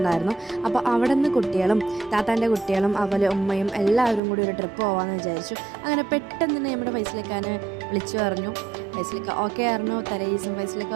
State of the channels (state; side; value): drops out; left; at 4.2 s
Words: അപ്പോൾ അവിടെ നിന്ന് കുട്ടികളും താത്താൻ്റെ കുട്ടികളും അതുപോലെ ഉമ്മയും എല്ലാവരും കൂടി ഒരു ട്രിപ്പ് പോകാമെന്ന് വിചാരിച്ചു. അങ്ങനെ പെട്ടെന്ന് തന്നെ നമ്മുടെ ഫൈസലിക്കാനെ വിളിച്ചു പറഞ്ഞു. ഫൈസലിക്ക ഓക്കെ ആയിരുന്നു, തലേദിവസം ഫൈസലിക്ക